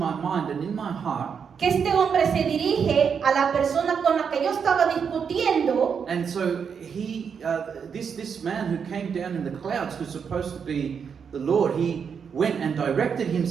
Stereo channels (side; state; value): left; quieter; 6.7 dB